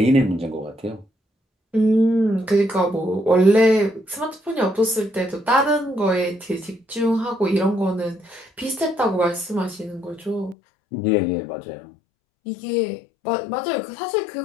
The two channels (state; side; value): drops out; right; at 10.6 s